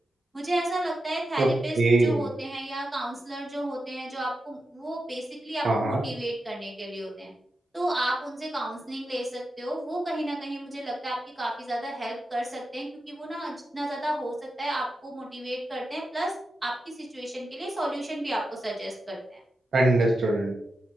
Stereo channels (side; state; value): both; normal; correlation 0.89